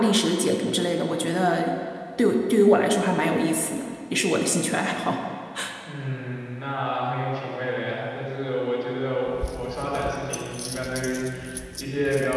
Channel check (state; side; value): identical; both; correlation 1.00